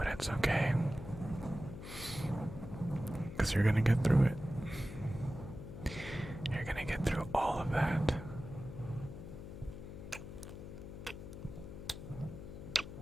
it's okay, because you're going to get through it. You're going to get through all of that.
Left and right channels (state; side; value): noise; left; hum, 10 dB below the sound